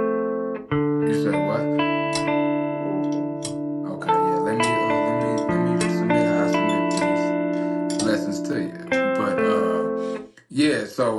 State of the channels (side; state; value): both; identical; correlation 1.00